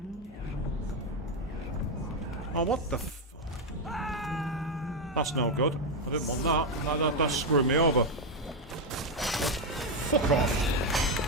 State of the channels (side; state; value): both; normal; correlation 0.06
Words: Oh, what the f... That's no good. I didn't want that. That screwed me over. Fuck off.